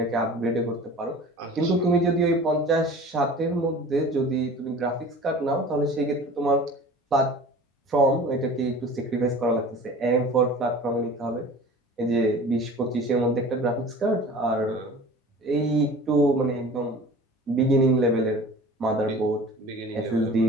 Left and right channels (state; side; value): normal; both; correlation 0.41